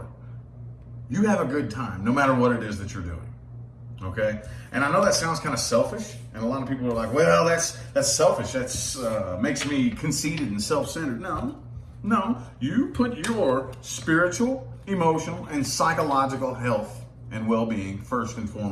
a good time, no matter what it is that you're doing. Okay, and I know that sounds kind of selfish, and a lot of people are like, "Well, that's selfish. That's makes me conceited and self-centered." No, you put your spiritual, emotional, and psychological health and well-being first and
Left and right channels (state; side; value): identical; both; correlation 1.00